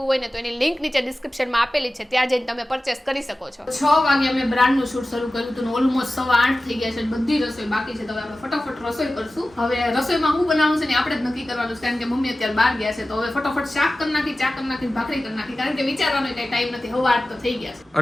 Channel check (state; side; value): normal; both; correlation 0.96